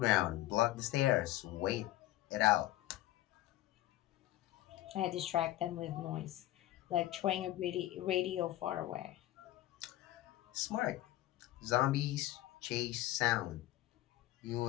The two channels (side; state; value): right; quieter; 15.3 dB